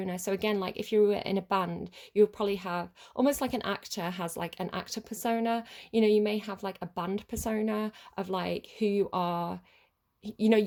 So again, like if you were in a band, you would probably have almost like an actor has like an actor persona. You know, you may have like a band persona of like who you are, you know,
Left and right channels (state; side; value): identical; both; correlation 1.00